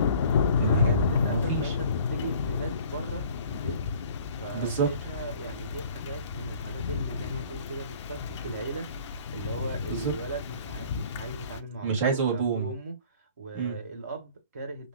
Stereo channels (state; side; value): inverted; both; correlation -0.51